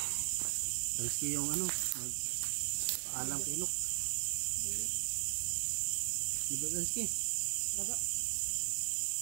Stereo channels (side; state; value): left; silent; 53 dB below the other